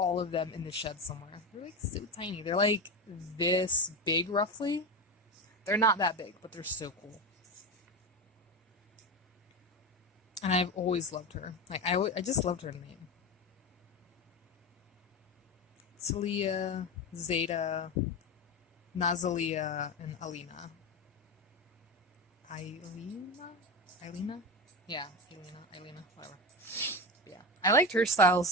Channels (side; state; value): both; normal; correlation 0.20